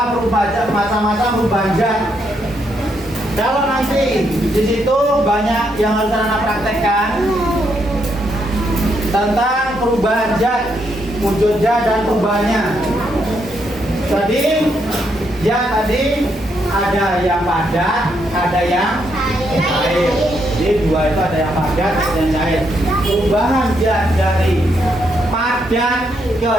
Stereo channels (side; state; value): both; normal; correlation 0.77